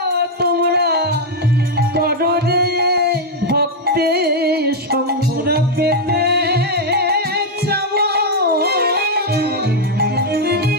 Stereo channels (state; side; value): normal; both; correlation 0.00